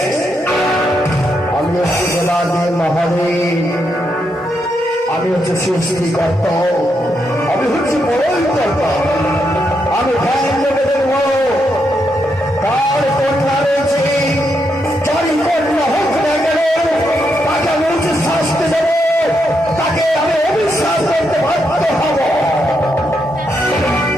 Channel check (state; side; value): normal; both; correlation 0.81